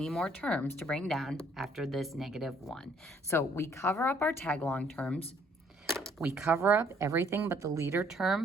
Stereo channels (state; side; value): normal; both; correlation 0.64